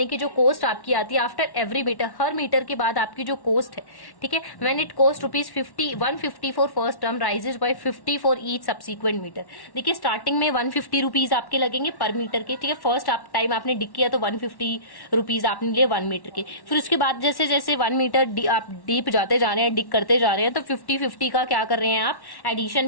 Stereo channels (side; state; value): right; late; 1.1 ms